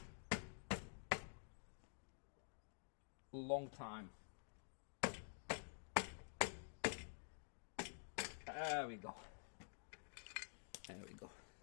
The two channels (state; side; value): silent; right; digital silence